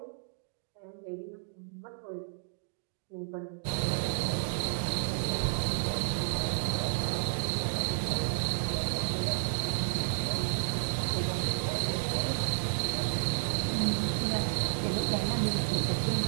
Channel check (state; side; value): silent; left; 57 dB below the other